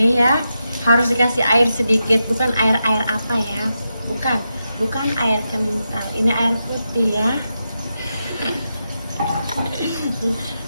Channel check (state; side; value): inverted; both; correlation -0.87